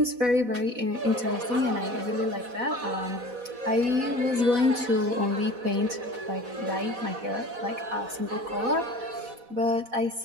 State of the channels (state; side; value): late; left; 4.1 ms